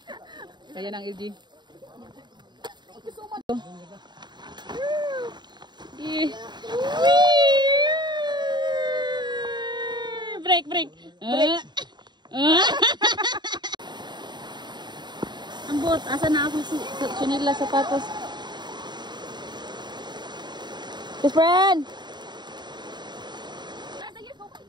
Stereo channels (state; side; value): late; left; 0.21 ms